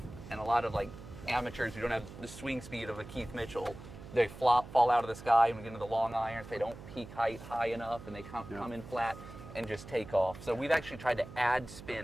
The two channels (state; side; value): noise; right; hum, 14 dB below the sound